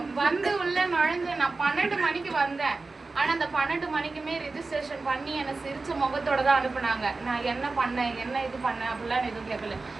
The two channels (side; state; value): left; quieter; 3.7 dB